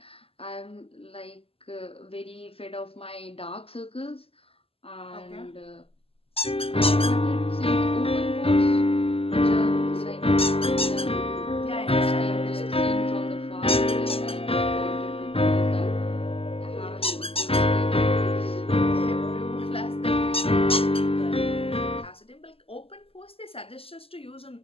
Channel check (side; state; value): right; late; 0.28 ms